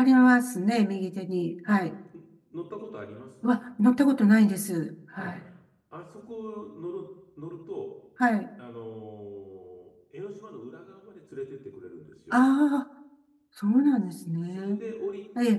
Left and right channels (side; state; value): both; identical; correlation 1.00